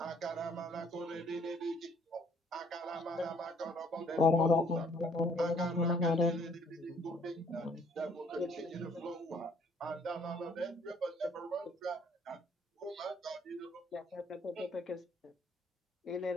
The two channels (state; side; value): normal; both; correlation 0.62